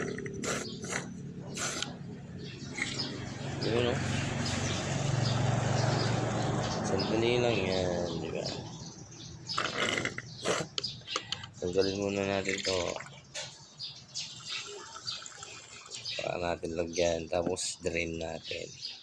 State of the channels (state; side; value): identical; both; correlation 1.00